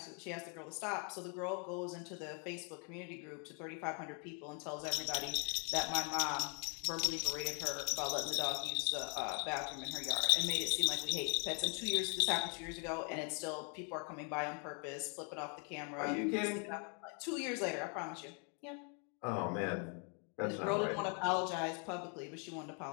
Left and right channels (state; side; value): quieter; right; 38.6 dB